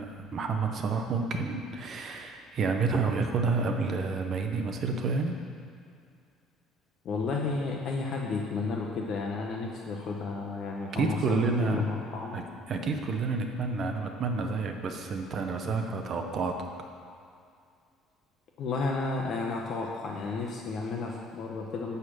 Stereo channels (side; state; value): both; normal; correlation 0.54